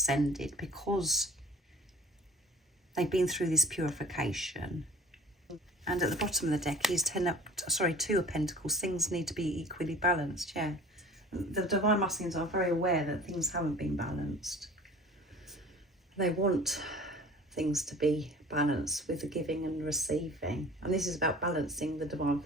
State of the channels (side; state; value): both; normal; correlation 0.45